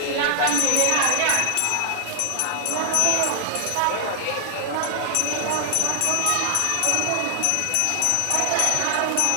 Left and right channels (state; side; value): different; both; correlation 0.00